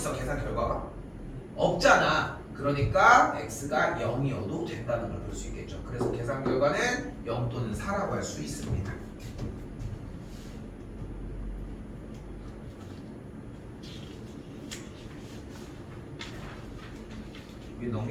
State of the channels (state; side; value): identical; both; correlation 1.00